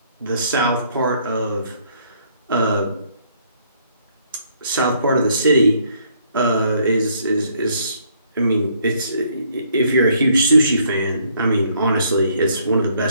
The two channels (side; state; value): both; inverted; correlation -0.67